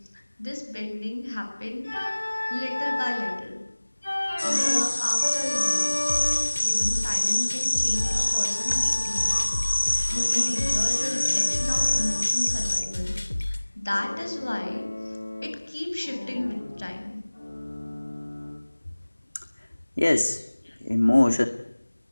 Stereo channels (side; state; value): both; inverted; correlation -1.00